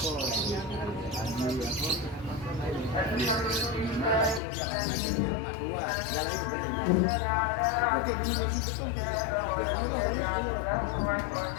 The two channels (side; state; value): right; drops out; at 4.4 s